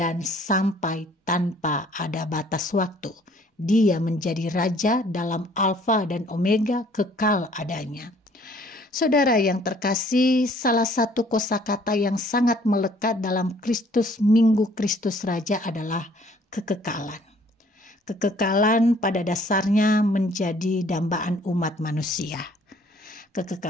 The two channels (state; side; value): normal; both; correlation 0.58